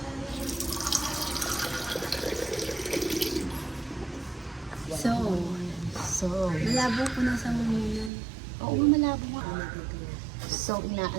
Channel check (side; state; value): left; drops out; at 8.1 s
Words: So, Malabo ko na sa munan. oo, malabo nga. So,